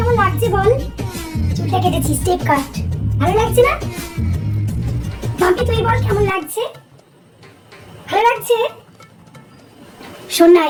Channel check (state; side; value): identical; both; correlation 1.00